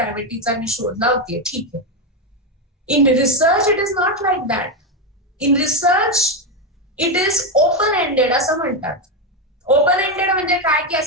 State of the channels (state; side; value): normal; both; correlation 0.09